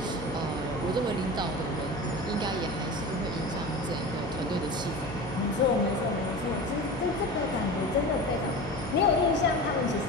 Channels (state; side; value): normal; both; correlation 0.31